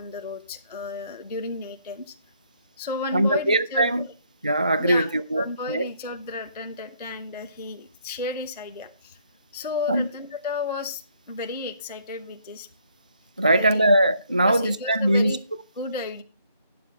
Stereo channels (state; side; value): inverted; both; correlation -0.68